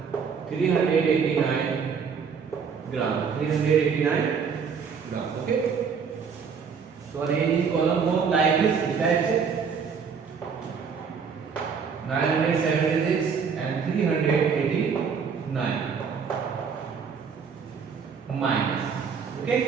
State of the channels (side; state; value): left; quieter; 6.2 dB